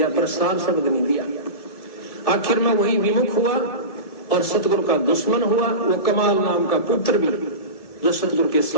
पर सार शब्द नहीं दिया। आखिर में वही विमुख हुआ और सतगुरु का दुश्मन हुआ। वो कमाल नाम का पुत्र भी जो सतगुरु के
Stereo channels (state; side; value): late; right; 2.3 ms